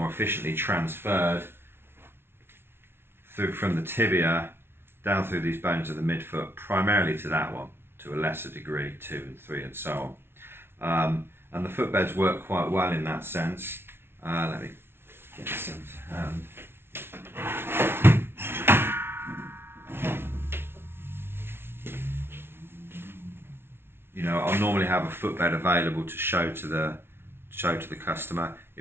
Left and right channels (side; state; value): left; late; 0.12 ms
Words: transferred from the tibia down through these bones of the midfoot, primarily to that one, to a lesser degree, 2 and 3 and so on. And the footbeds work quite well in that sense. Let me get some to hand. You know, I'll normally have a footbed available to show to the customer.